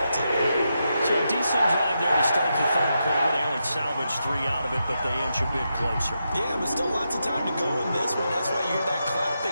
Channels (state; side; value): inverted; both; correlation -0.85